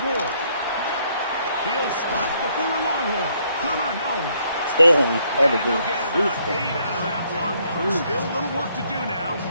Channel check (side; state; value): both; inverted; correlation -0.69